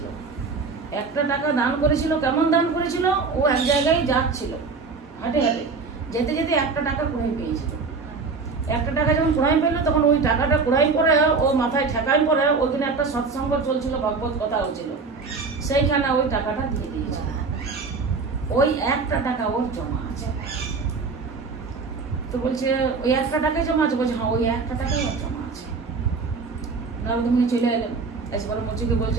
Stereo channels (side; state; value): left; quieter; 4.5 dB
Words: একটা টাকা দান করেছিল। কেমন দান করেছিল? ও এক জায়গায় যাচ্ছিল, হাঁটে হাঁটে যেতে যেতে একটা টাকা কুড়াই পেয়েছিল। একটা টাকা যখন কুড়াই পেলো, তখন ওই টাকাটা কুড়াই পরে ও মাথায় ঠেকাই পরে ওইখানে একটা সৎসঙ্গ চলছিল, ভগবত কথা হচ্ছিল, সেইখানে ওই টাকাটা দিয়ে দিয়েছিল। ওই একটা টাকা ওর জমা আছে। তো বলছে ওই একটা টাকাই জমা আছে? বলছে হ্যাঁ, ওই একটা টাকাই ওর জমা আছে। নারদমুনি চলে এলেন, এসে বলে মুচিকে